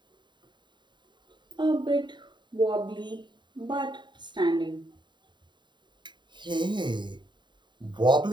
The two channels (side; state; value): left; late; 0.22 ms